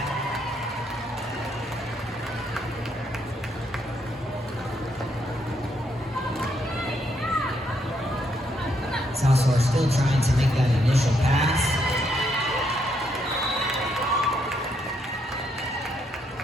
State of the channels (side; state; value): both; normal; correlation 0.75